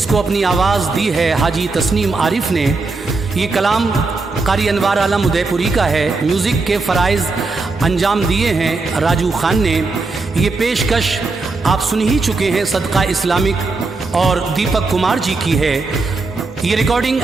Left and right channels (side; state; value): left; quieter; 3.7 dB